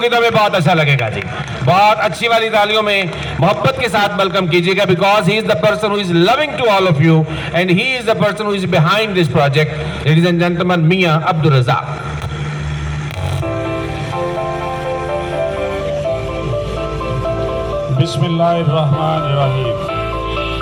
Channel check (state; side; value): identical; both; correlation 1.00